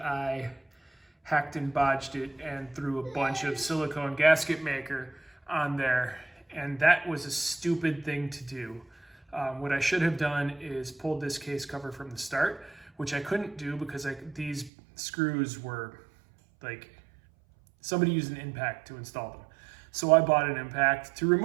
hacked and bodged it and threw a bunch of silicone gasket maker on there. And that was a stupid thing to do. What I should have done is pulled this case cover from the start, which I couldn't do because these screws were like, somebody used an impact to install them. So I bought an impact to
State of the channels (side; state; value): left; drops out; at 14.7 s